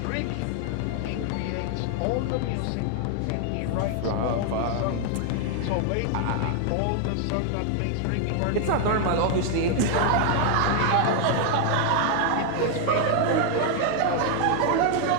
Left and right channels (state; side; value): different; both; correlation 0.00